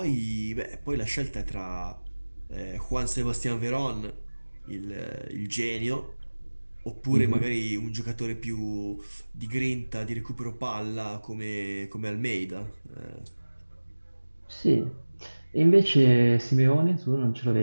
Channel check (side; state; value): both; inverted; correlation -1.00